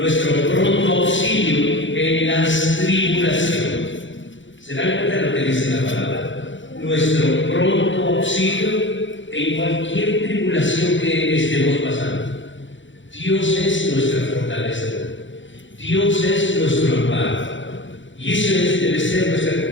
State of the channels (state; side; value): late; right; 0.55 ms